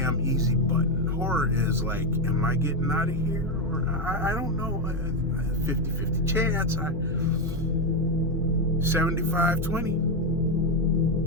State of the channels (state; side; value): normal; both; correlation 0.08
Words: easy button. Horror is like, am I getting out of here? Or I don't know. 50-50 chance.